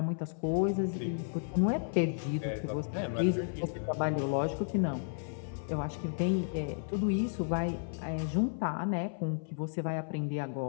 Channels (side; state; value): right; silent; 56 dB below the other